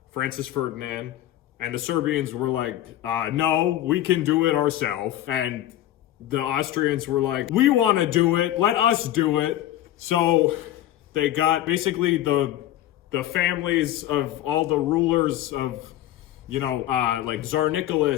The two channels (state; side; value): quieter; right; 13.3 dB